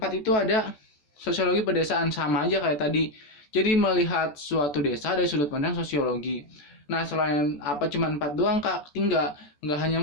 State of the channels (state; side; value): late; right; 14 ms